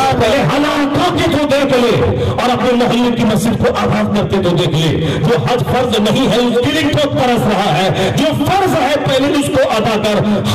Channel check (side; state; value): both; identical; correlation 1.00